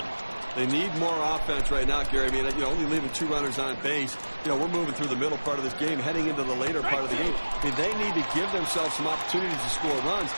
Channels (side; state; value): both; inverted; correlation -1.00